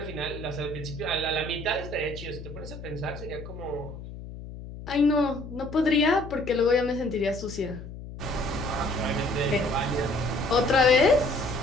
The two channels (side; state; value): left; noise; hum, 12 dB below the sound